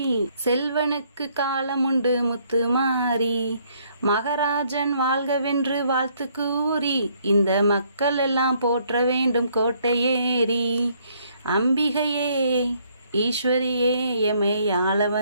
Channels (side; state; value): both; inverted; correlation -0.67